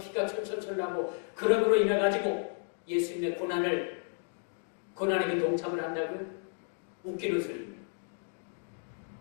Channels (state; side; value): silent; right; 56 dB below the other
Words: 철철철 나고 그러므로 인해가지고 예수님의 고난에 그 동참을 한다고 웃기는 소리입니다.